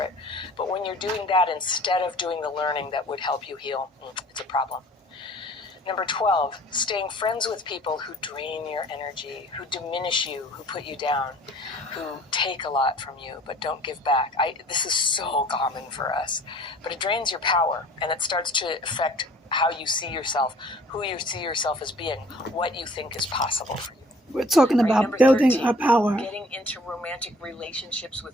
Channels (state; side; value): normal; both; correlation 0.52